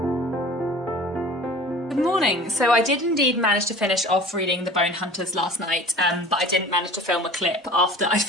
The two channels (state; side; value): normal; both; correlation 0.42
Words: So I did indeed manage to finish off reading The Bone Hunters last night, but I didn't manage to film a clip after I